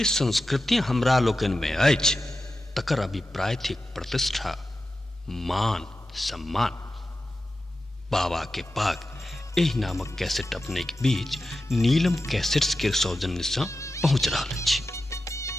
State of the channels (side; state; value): both; normal; correlation 0.92